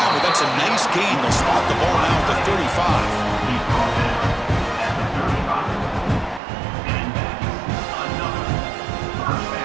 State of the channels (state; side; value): drops out; left; at 6.4 s